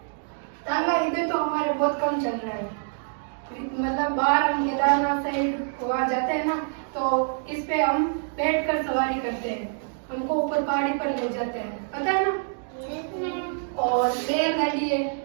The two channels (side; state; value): left; silent; 61 dB below the other